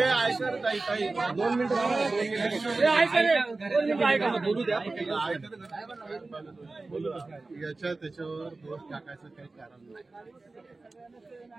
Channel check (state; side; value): quieter; left; 3.4 dB